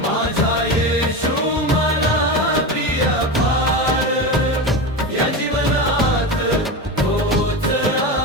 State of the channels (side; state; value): both; normal; correlation 0.21